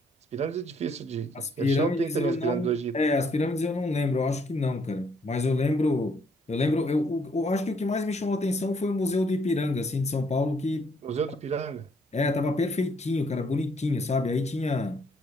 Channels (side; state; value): both; normal; correlation 0.68